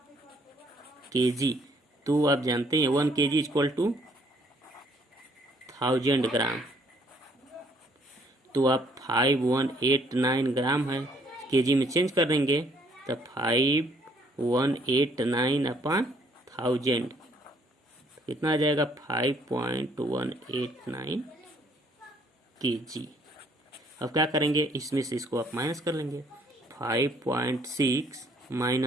kg। तो आप जानते हैं 1 kg इक्वल टू 1000 ग्राम, तो आप 5189 ग्राम है, केजी में चेंज कर देंगे तो 5189 अपॉन 1000 कितना आ जाएगा, 5.189 kg। अब क्या करेंगे, इसमें से इसको आप माइनस कर लेंगे, 5.6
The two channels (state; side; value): normal; both; correlation 0.64